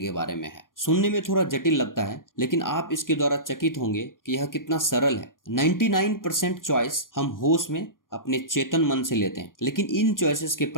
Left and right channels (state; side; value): late; right; 0.90 ms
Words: बारे में है। सुनने में थोड़ा जटिल लगता है, लेकिन आप इसके द्वारा चकित होंगे कि यह कितना सरल है। 99% चॉइस हम होश में अपने चेतन मन से लेते हैं, लेकिन इन चॉइसेस के